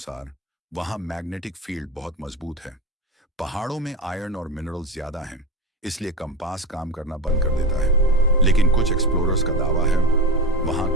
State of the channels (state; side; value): normal; both; correlation 0.23